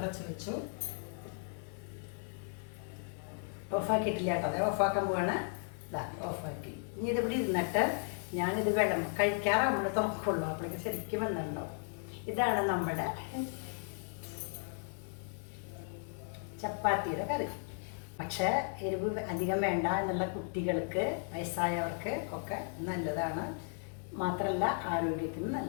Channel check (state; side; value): silent; right; 54 dB below the other